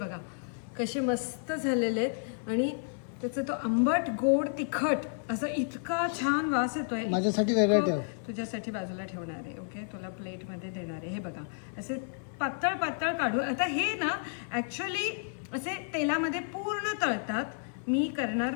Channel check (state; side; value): silent; right; 57 dB below the other